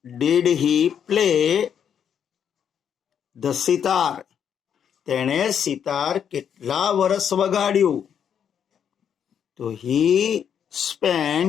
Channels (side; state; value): right; quieter; 8.3 dB